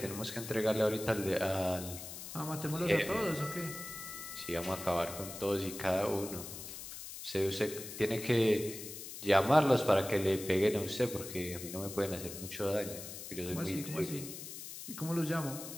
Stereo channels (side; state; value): left; noise; hiss, 10 dB below the sound